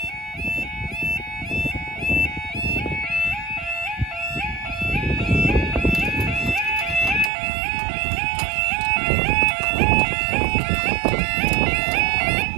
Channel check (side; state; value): left; drops out; at 7.3 s